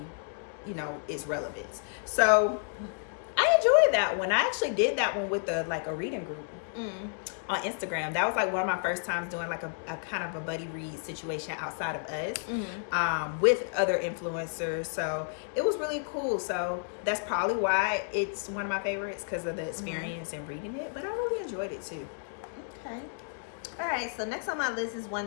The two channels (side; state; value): right; silent; digital silence